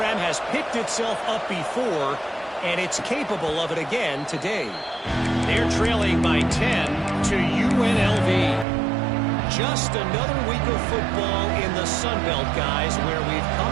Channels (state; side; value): drops out; left; at 8.7 s